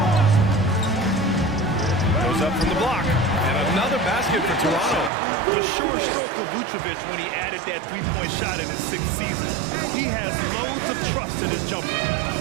Goes up from the block. And another basket for Toronto. The sure stroke of Vucevic when he added that three-point shot in his 6th season. He has loads of trust in his jumper.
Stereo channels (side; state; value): left; drops out; at 5.1 s